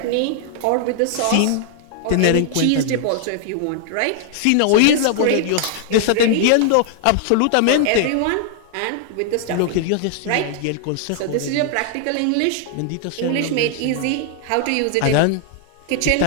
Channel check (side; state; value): both; different; correlation 0.00